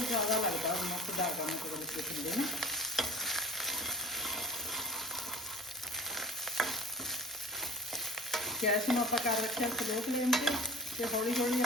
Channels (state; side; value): normal; both; correlation 0.42